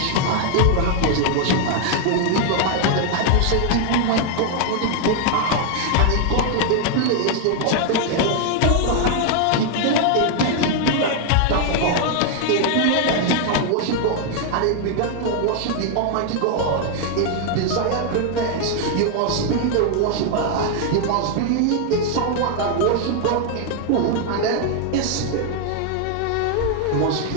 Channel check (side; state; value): both; different; correlation 0.00